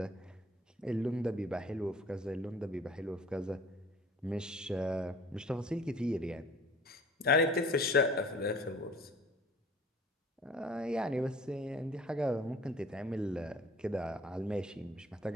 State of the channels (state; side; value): normal; both; correlation 0.49